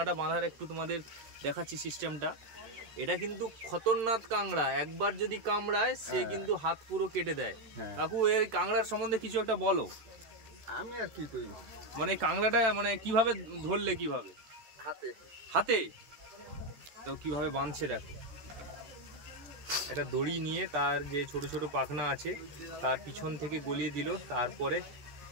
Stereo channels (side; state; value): left; late; 13 ms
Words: বাঁধার একটু তোমাদের দেখাচ্ছি সিস্টেমটা, এটা কিন্তু খতরনাক কাংড়া, একবার যদি কামড়ায় সে কিন্তু হাত পুরো কেটে দেয়। কাকু এই কাংড়ার সম্বন্ধে কিছু একটা বলো। আমি আর কি করি, মানে কাংড়াটা মানে কিভাবে ধরলে, কিভাবে? হাতে হাতে। তো কিভাবে বাঁধছে দেখো, একটা দড়ি নিয়ে তার যে ছোট ছোট পাখনা আছে তার পিছন থেকে গলিয়ে দিল, তারপরে